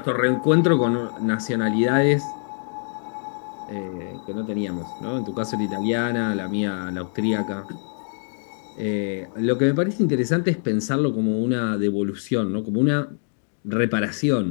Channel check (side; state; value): right; silent; digital silence